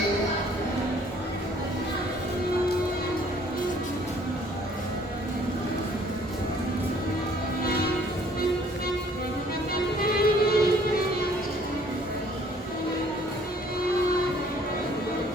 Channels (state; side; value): normal; both; correlation 0.58